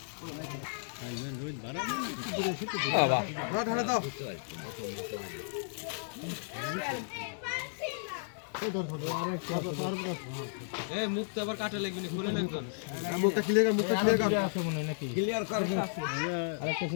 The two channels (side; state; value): right; silent; digital silence